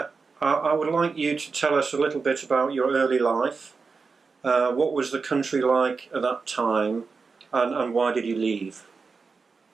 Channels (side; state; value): left; quieter; 4.7 dB